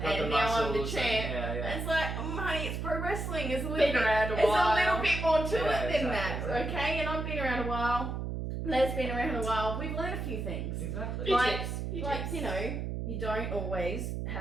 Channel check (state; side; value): noise; right; hum, 4 dB below the sound